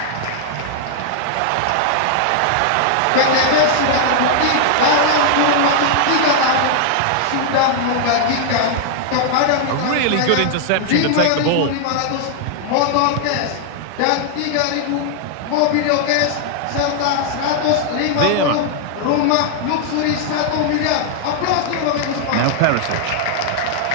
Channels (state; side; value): different; both; correlation 0.00